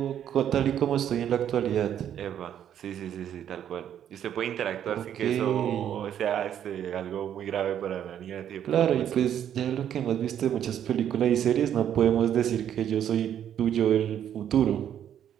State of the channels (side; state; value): left; quieter; 9.9 dB